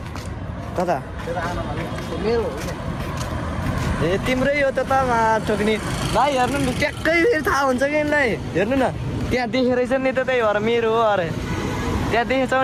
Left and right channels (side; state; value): both; identical; correlation 1.00